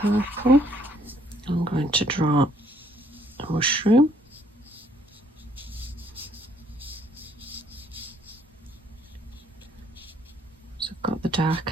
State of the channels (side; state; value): both; normal; correlation 0.65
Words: I'm going to draw a mushroom. Got the